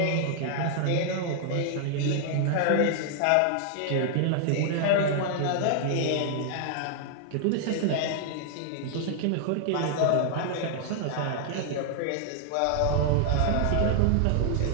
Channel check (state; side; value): different; both; correlation 0.00